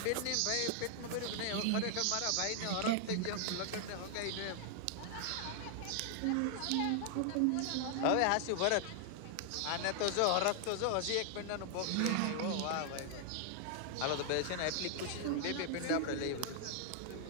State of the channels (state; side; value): different; both; correlation 0.00